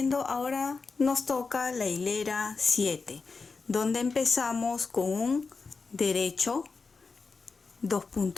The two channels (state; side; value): quieter; right; 4.5 dB